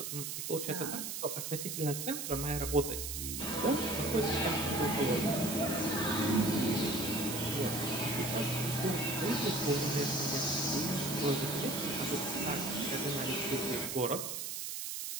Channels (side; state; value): right; noise; hiss, 4 dB below the sound